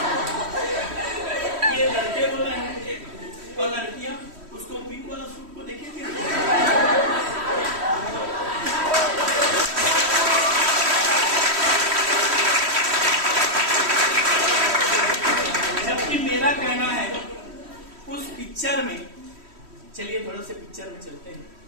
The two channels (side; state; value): left; late; 3.1 ms